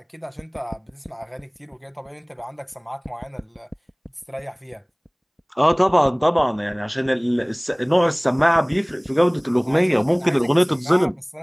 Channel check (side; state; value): both; identical; correlation 1.00